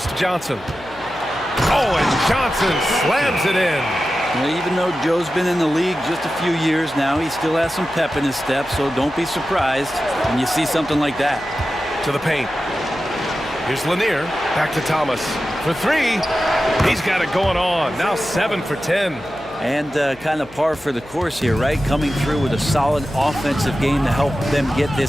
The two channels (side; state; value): left; noise; hum, 23 dB below the sound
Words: to Johnson. Oh, and Johnson slams it in. Well, even though Joe's been in the league just a few years now, he still has some pep in his step, so don't be surprised when you see something like that. To the paint. Here's Lanier. Back to Thomas. For 3. He's got it going on. Now 7 for 10. And kind of par for the course here, right? Coming through with a solid offensive game to help them get